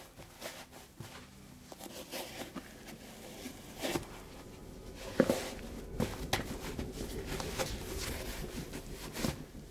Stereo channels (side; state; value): both; identical; correlation 1.00